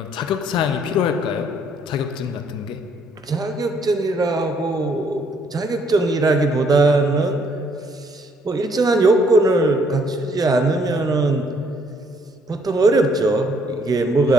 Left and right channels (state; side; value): normal; both; correlation 0.67